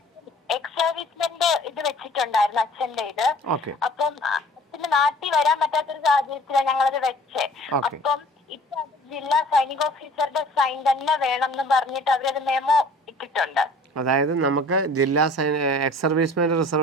എക്സ് സർവീസ്മെന്റ് ഇത് വെച്ചിട്ടുണ്ടായിരുന്നു അച്ഛന്റെ ഇത്. അപ്പം അച്ഛന് നാട്ടിൽ വരാൻ പറ്റാത്തൊരു സാഹചര്യത്തിലാണ് ഞങ്ങളത് വെച്ചേ. അപ്പം ഇപ്പൊ ജില്ലാ സൈനിക ഓഫീസറുടെ സൈൻ തന്നെ വേണം എന്ന് പറഞ്ഞിട്ട് അവരത് മെമ്മോ ഇട്ടിട്ടുണ്ട്. അതായത് നമുക്ക് ജില്ലാ എക്സ് സർവീസ്മെന്റ്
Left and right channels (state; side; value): normal; both; correlation 0.48